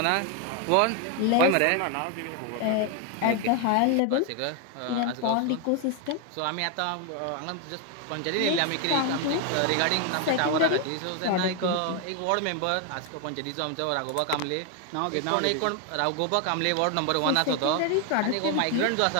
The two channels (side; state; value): both; different; correlation 0.01